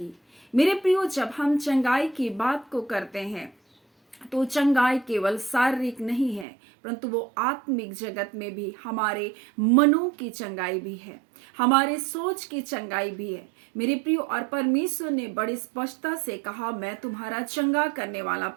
मेरे प्रियो, जब हम चंगाई की बात को करते हैं तो चंगाई केवल शारीरिक नहीं है, परंतु वो आत्मिक जगत में भी हमारे मनों की चंगाई भी है, हमारे सोच की चंगाई भी है। मेरे प्रियो, और परमेश्वर ने बड़ी स्पष्टता से कहा, मैं तुम्हारा चंगा करने वाला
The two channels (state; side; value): drops out; left; at 6.5 s